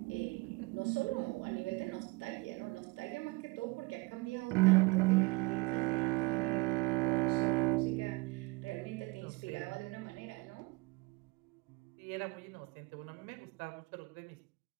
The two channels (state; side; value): quieter; left; 25.2 dB